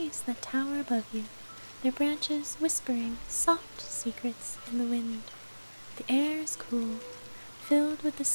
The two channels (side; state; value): both; inverted; correlation -1.00